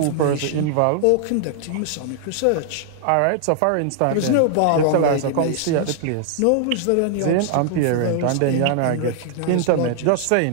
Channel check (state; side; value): different; both; correlation -0.01